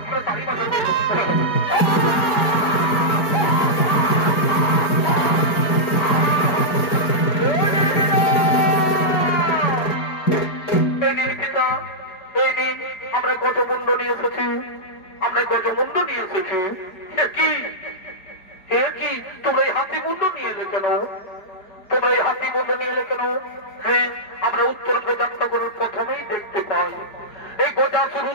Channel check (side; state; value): right; late; 4.8 ms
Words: আমরা তারই মাথা আমরা গজমুণ্ড নিয়ে এসেছি, আমরা গজমুণ্ড নিয়ে এসেছি। কি তোমরা এই হাতি মুন্ড নিয়ে এলে কেন? তোমরা এই হাতি মুন্ড নিয়ে এলে কেন? হ্যাঁ, আমরা উত্তর যাত্রা করার প্রথমেই দেখতে পাই এই গজাসুর